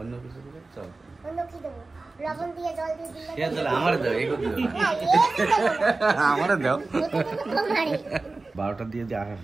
কিছু দিলে চল। অন্য কি দেবো? লবণ দিয়ে জল দিয়ে দিলে ঠিক আছে, আমার দাও, এই করতে না, এই দেবো না। আমার দাও। ওটা তো তোমারই। 12টা দিয়ে দিয়ে আসা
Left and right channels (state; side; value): quieter; left; 3.5 dB